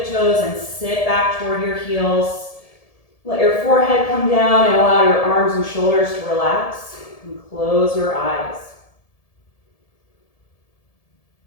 and sit back toward your heels. Let your forehead come down and allow your arms and shoulders to relax, and close your eyes.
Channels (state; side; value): late; right; 1.7 ms